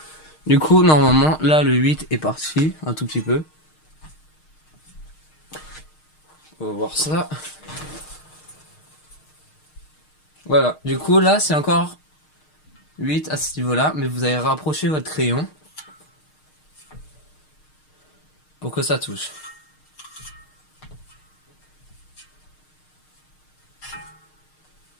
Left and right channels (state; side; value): late; right; 6.5 ms